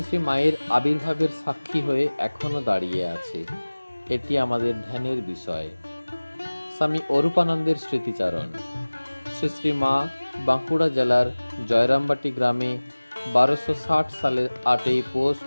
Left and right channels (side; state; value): both; inverted; correlation -1.00